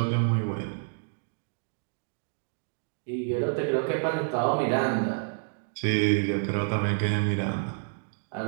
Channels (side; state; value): left; silent; digital silence